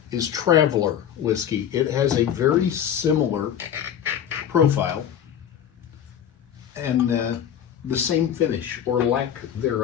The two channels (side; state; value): right; quieter; 9.4 dB